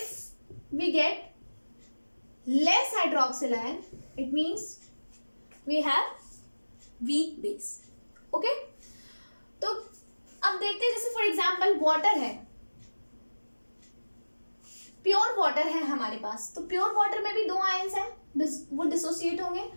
we get less hydroxyl ion, it means we have weak base. Okay, तो अब देखते हैं, जैसे फॉर एग्जाम्पल वाटर है, pure water है हमारे पास, तो pure water में भी दो आयंस हैं, वो डिसोसिएट होंगे,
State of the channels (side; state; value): both; inverted; correlation -1.00